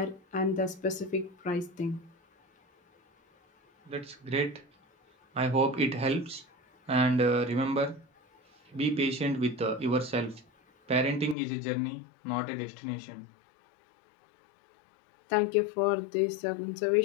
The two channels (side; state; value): right; drops out; at 11.4 s